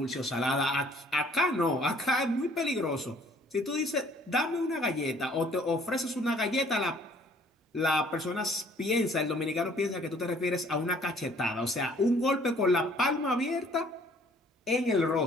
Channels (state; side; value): normal; both; correlation 0.58